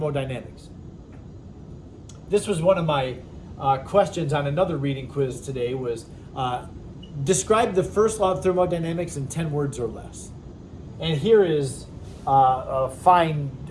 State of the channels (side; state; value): both; identical; correlation 1.00